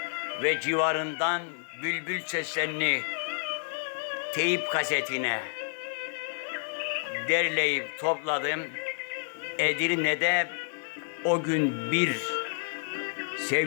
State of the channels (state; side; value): silent; right; digital silence